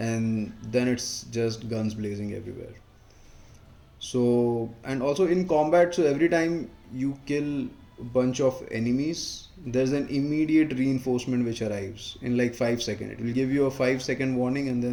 then it's just guns blazing everywhere. So, and also in combat, so every time you kill a bunch of enemies, there's an immediate reinforcement which arrives in like 5 seconds. It will give you a 5 second warning, and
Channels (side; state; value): both; identical; correlation 1.00